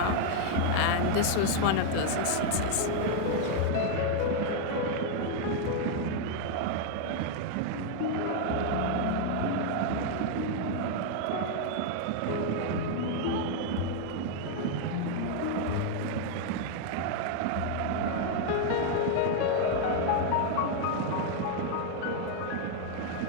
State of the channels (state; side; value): different; both; correlation 0.00